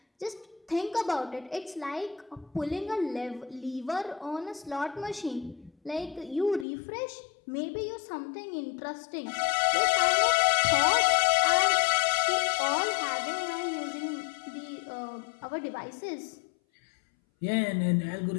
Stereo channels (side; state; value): right; drops out; at 6.7 s